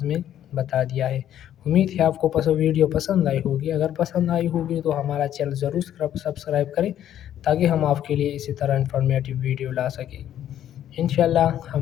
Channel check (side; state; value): right; quieter; 11.1 dB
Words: میں بتا دیا ہے۔ امید ہے آپ کو ویڈیو پسند آئی ہوگی، اگر پسند آئی ہوگی تو ہمارا چینل ضرور سبسکرائب کریں تاکہ ہم آپ کے لیے اسی طرح انفارمیٹیو ویڈیو لا سکیں۔ انشاءاللہ